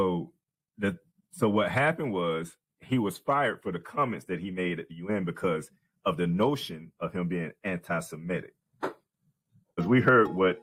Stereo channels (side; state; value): both; identical; correlation 1.00